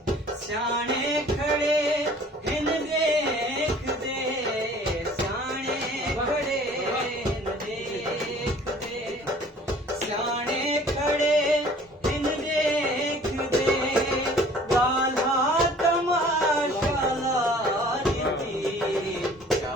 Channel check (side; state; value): both; normal; correlation 0.51